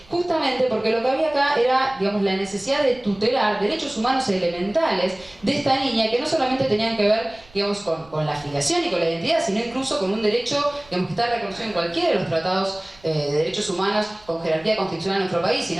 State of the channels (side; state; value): right; noise; rumble, 26 dB below the sound